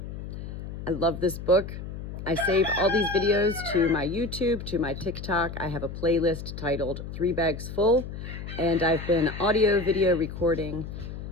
I love this book. I save all these videos to my YouTube, to my TikTok. I have a playlist titled 3 Bags Full, and I've been audio, video recording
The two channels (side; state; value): left; noise; hum, 9 dB below the sound